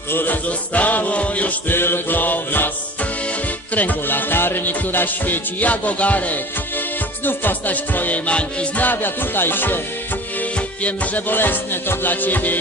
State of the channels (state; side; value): normal; both; correlation 0.39